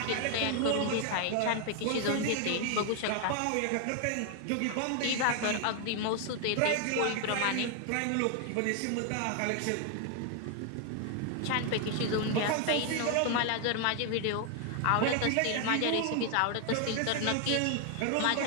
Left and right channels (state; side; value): different; both; correlation 0.00